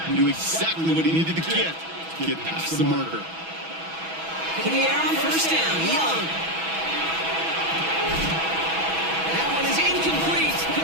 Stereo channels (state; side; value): late; left; 6.1 ms